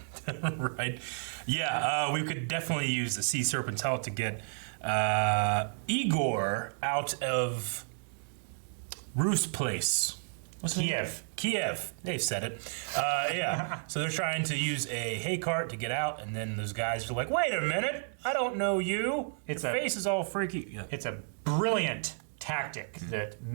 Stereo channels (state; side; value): silent; left; digital silence